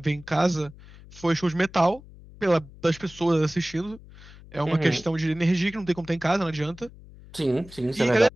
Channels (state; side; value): noise; left; hum, 20 dB below the sound